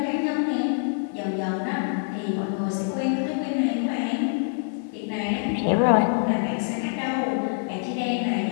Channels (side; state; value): right; silent; digital silence